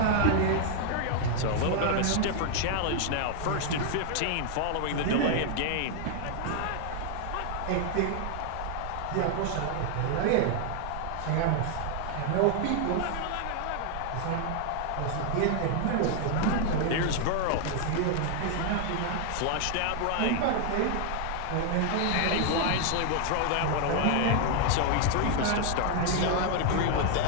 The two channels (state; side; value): different; both; correlation 0.00